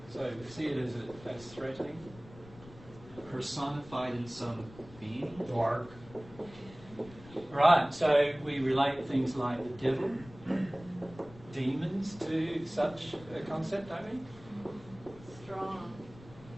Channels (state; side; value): noise; left; rumble, 20 dB below the sound